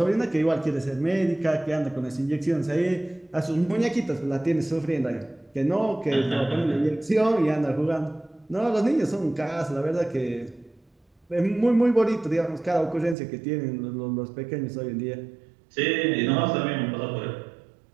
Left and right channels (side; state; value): left; drops out; at 13.2 s